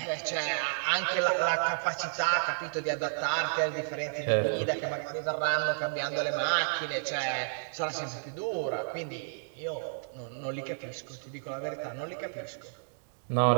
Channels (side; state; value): left; silent; digital silence